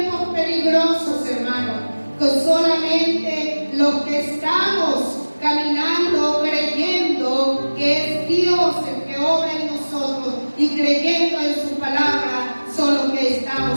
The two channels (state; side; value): inverted; both; correlation -1.00